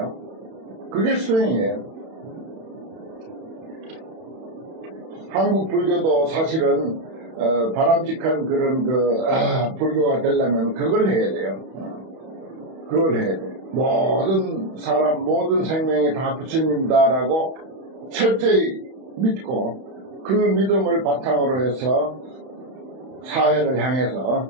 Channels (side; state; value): left; late; 31 ms